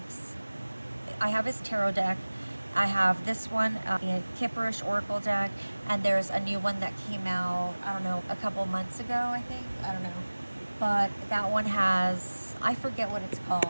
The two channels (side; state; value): both; inverted; correlation -1.00